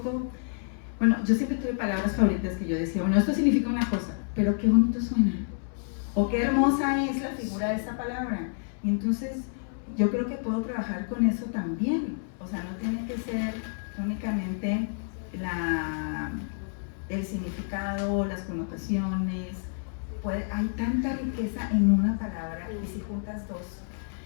bueno, yo siempre tuve palabras favoritas que yo decía, bueno, esto significa una cosa, pero qué bonito suena, o qué hermosa es la figura de esa palabra. Y entonces yo creo que puedo trabajar con eso también, o sea, no tiene que ser únicamente el significado, las connotaciones, hay tanta riqueza en una palabra, y si juntas dos.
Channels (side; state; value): right; silent; 59 dB below the other